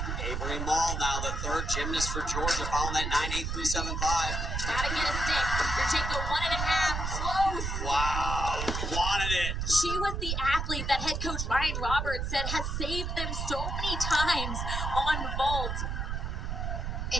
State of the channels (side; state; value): right; noise; rumble, 2 dB below the sound